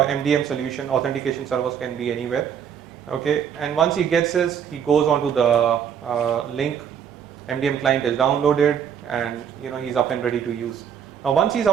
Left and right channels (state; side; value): quieter; left; 8.2 dB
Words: MDM solution. Authentication servers can be anywhere. Okay, and once he gets this, he goes onto the link. MDM client is downloaded, and he's up and ready to use. Now once he's